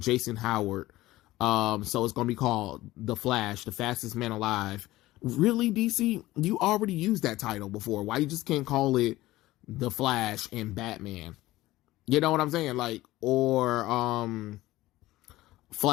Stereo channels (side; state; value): right; quieter; 17.2 dB